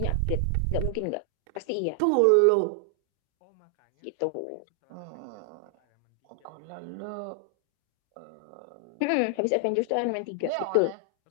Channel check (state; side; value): different; both; correlation 0.00